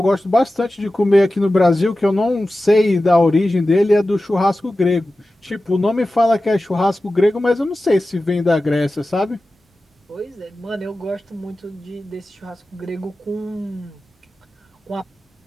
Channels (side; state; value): both; normal; correlation 0.94